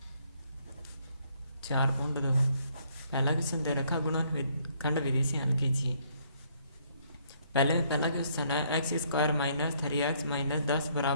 4.2 पहला क्वेश्चन दे रखा गुणनखंड विधि से हल कीजिए। पहला क्वेश्चन है x square minus 3x minus 10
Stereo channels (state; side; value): inverted; both; correlation -0.67